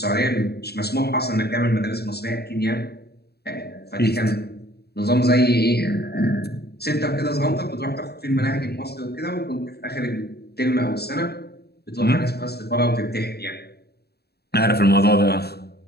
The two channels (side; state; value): right; late; 0.47 ms